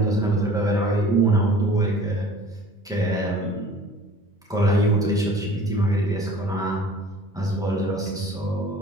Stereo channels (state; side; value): normal; both; correlation 0.47